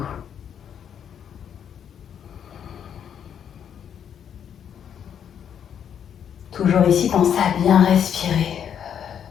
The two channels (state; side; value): quieter; right; 8.6 dB